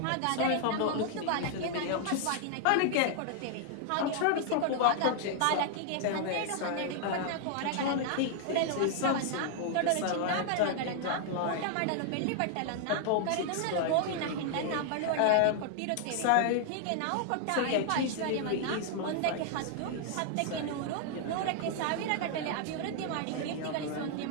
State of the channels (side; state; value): both; different; correlation 0.00